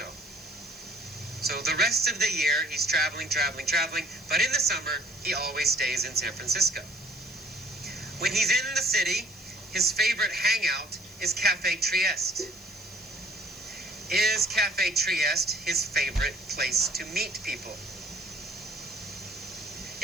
So the rest of the year, he's traveling, but in the summer, he always stays in San Francisco. When he's in the city, his favorite hangout is Cafe Trieste. Is Cafe Trieste his favorite place to meet people?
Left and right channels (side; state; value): left; noise; hiss, 23 dB below the sound